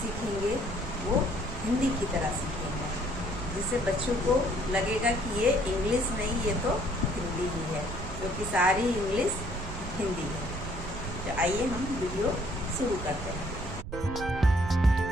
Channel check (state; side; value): noise; right; rumble, 7 dB below the sound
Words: सीखेंगे वो हिंदी की तरह सीखेंगे, जिससे बच्चों को लगेगा कि ये इंग्लिश नहीं, ये तो हिंदी ही है, क्योंकि सारी इंग्लिश हिंदी है। तो आइए हम वीडियो शुरू करते हैं।